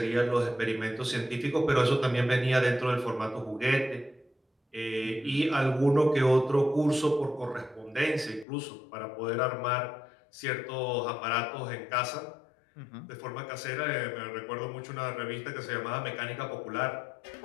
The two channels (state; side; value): drops out; right; at 8.5 s